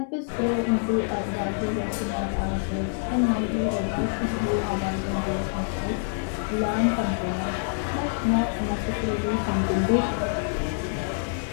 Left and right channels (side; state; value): right; silent; digital silence